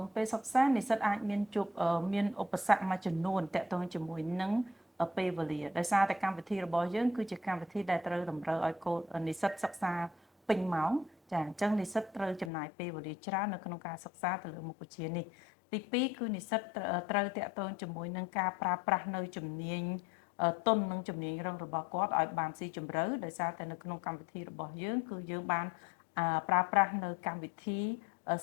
ងពេលសិក្សានិស្សិតអាចមានជួបមានឧបសគ្គមួយចំនួនតាក់ទងជាមួយនឹងពេលវេលាដោយសារតែកម្មវិធីរបស់យើងគឺជាកម្មវិធីដែលត្រូវតម្រូវឲ្យកូននិស្សិតសិក្សាពេញម៉ោងចាអញ្ចឹងនិស្សិតត្រូវចំណាយពេលវេលាច្រើននៅក្នុងការសិក្សាទៅលើមុខវិជ្ជានេះទី2គឺនិស្សិតត្រូវតាក់ទងជាមួយនឹងការប្រើប្រាស់នៅជំនាញទុននិងជំនាញរឹងរបស់គាត់ឲ្យបានស៊ីជម្រៅដោយសារតែនៅក្នុងកម្មវិធីរបស់យើងគឺយើងបានប្រើប្រាស់នៅកម្មវិធី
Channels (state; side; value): drops out; right; at 12.5 s